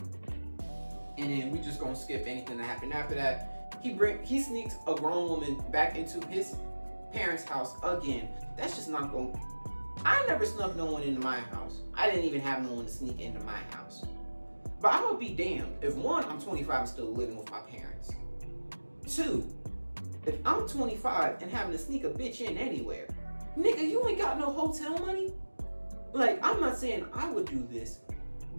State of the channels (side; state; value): both; inverted; correlation -1.00